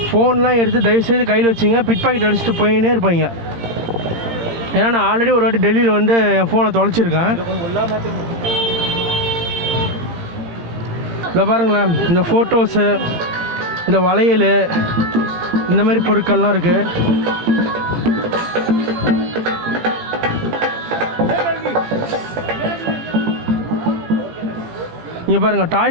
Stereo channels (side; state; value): left; late; 17 ms